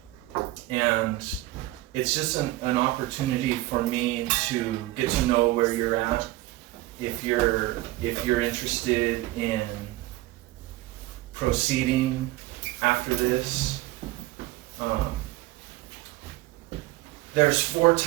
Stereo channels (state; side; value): quieter; left; 18.2 dB